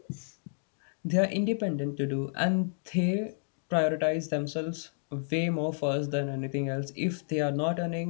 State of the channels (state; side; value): silent; right; digital silence